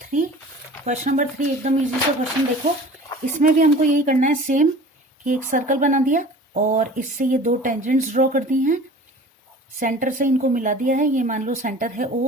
3। क्वेश्चन नंबर 3 एकदम इजी सा क्वेश्चन। देखो इसमें भी हमको यही करना है सेम, कि एक सर्कल बना दिया और इससे ये दो टेंजेंट्स ड्रॉ कर दी हैं, सेंटर से इनको मिला दिया है। ये मान लो सेंटर है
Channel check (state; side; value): normal; both; correlation 0.42